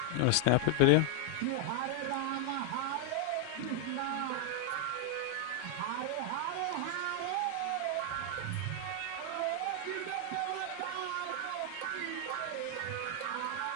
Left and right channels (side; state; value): both; different; correlation 0.00